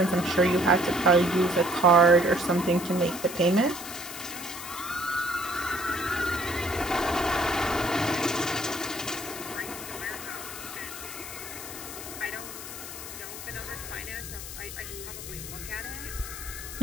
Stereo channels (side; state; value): left; noise; hiss, 10 dB below the sound